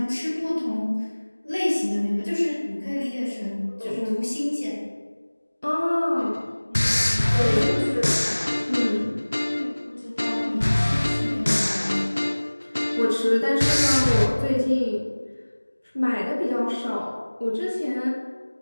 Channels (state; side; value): inverted; both; correlation -1.00